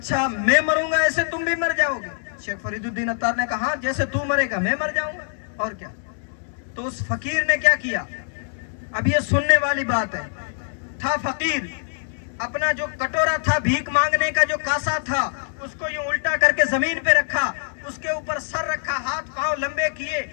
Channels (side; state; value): right; silent; digital silence